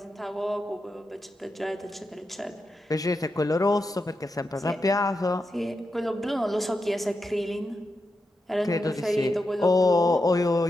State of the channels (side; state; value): both; normal; correlation 0.87